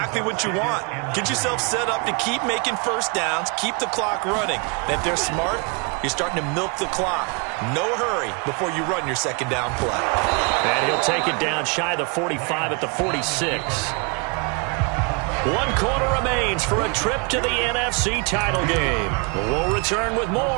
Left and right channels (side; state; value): left; quieter; 33.4 dB